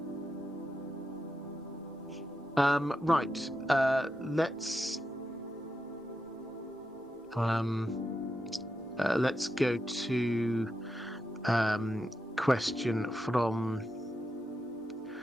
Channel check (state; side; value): normal; both; correlation 0.87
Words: Right. Let's go to question from